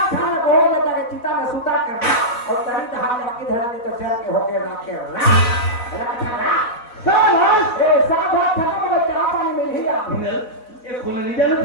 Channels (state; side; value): late; right; 4.1 ms